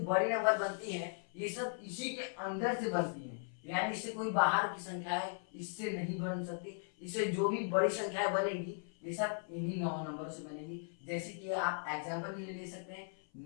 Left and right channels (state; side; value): silent; right; 53 dB below the other